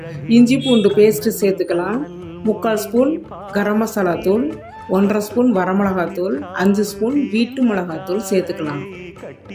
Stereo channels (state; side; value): identical; both; correlation 1.00